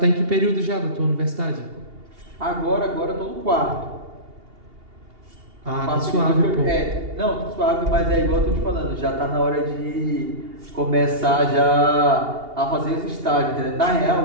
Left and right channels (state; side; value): late; left; 2.8 ms